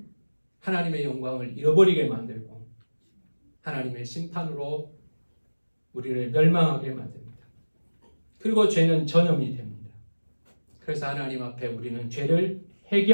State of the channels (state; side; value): inverted; both; correlation -1.00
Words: 하나님의 영광을 잃어버리게 만들고 하나님의 심판으로 우리를 멸망하게 만듭니다. 그리고 죄는 전염이 됩니다. 그래서 하나님 앞에 우리는 죄를